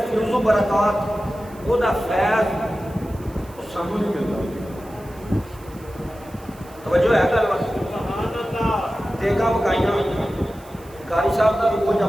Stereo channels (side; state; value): right; noise; hiss, 25 dB below the sound